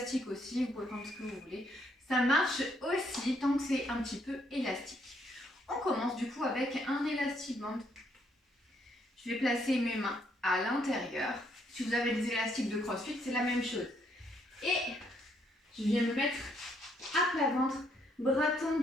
aussi, vous pouvez prendre ce que vous voulez. Ça marche aussi tant que c'est un petit peu élastique. On commence du coup avec un élastique band. Je vais placer mes mains à l'intérieur. Si vous avez des élastiques de CrossFit, c'est la même chose. Et je viens me mettre à plat ventre, bras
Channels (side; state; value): both; normal; correlation 0.71